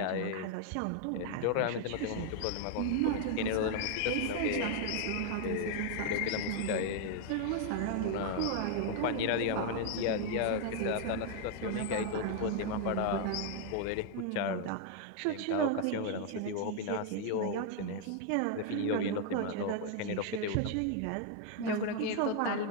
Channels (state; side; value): different; both; correlation 0.00